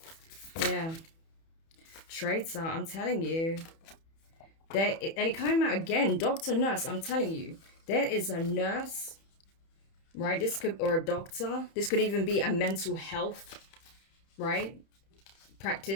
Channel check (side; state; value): right; late; 31 ms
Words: Yeah. Traitor, I'm telling you. And it came out again. Doctor, nurse, I'm telling you. There is a nurse, right? This could, or a doctor. This could even be a mental health, right?